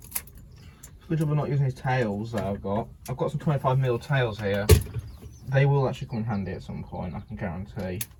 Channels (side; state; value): both; identical; correlation 1.00